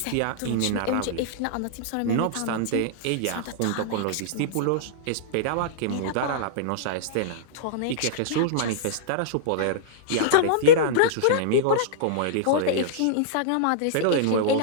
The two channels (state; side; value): different; both; correlation -0.02